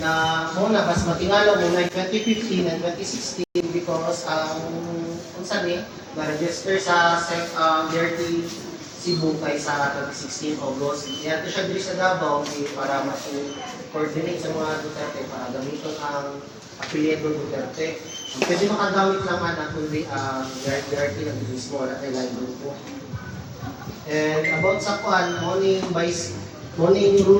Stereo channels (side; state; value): both; identical; correlation 1.00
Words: muna, mas matingalo muna 2015 and 2016 because kung saan na-register sa Dirty Cebu kay sa 2016 August. Kaya ito siya dito sa Davao para mag-coordinate sa mga Duterte para gamitin ang apelyido Duterte. Pwede makagamit naman ang kundi Dirty ng mismo na kailangan grupo. And about sa morning